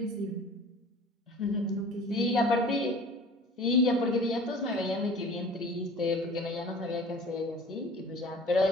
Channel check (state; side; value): normal; both; correlation 0.44